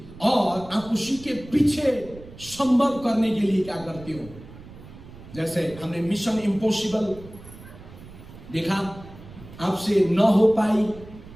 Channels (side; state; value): right; noise; rumble, 18 dB below the sound